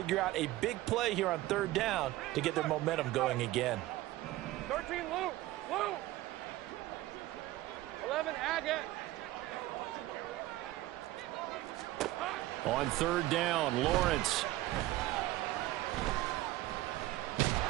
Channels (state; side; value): quieter; left; 16.8 dB